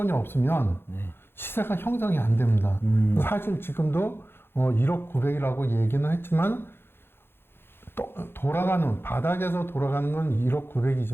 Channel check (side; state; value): right; late; 0.11 ms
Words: 없으면 시세가 형성이 안 됩니다. 사실 지금도 1억 9백이라고 얘기는 했지만 또 돌아가는 바닥에서 돌아가는 건 1억